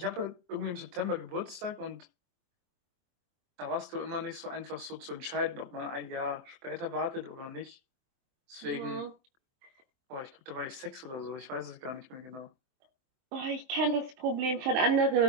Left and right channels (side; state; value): left; late; 23 ms